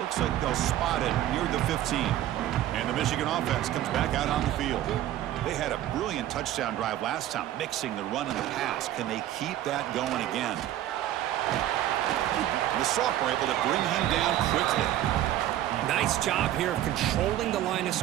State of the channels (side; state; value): left; quieter; 13.0 dB